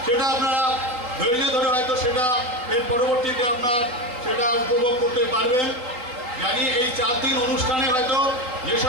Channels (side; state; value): left; late; 3.9 ms